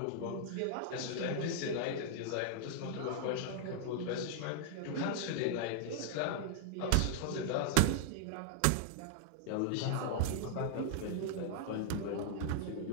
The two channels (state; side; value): different; both; correlation -0.01